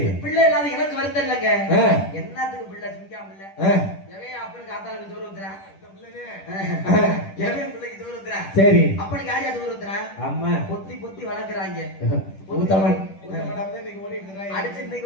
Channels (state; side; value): late; right; 10 ms